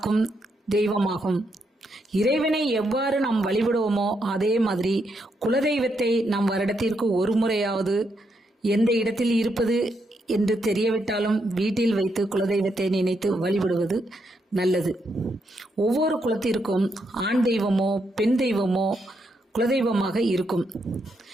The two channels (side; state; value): both; normal; correlation 0.79